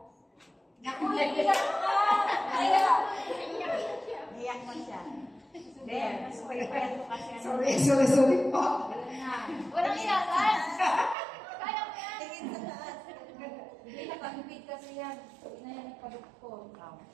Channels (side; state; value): left; drops out; at 11.2 s